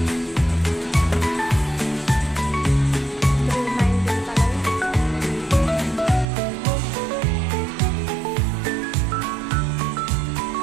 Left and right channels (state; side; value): drops out; left; at 6.2 s